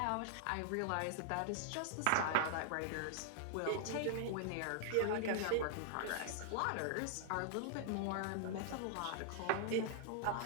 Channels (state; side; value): different; both; correlation -0.01